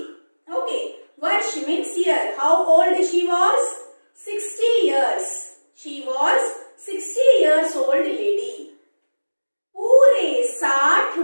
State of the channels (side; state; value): both; inverted; correlation -1.00